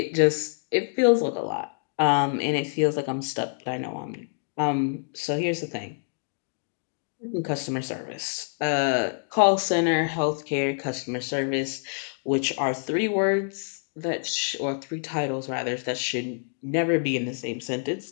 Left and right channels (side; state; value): right; silent; digital silence